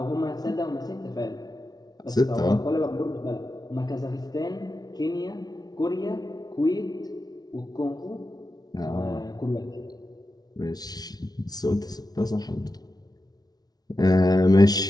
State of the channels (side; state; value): right; late; 0.19 ms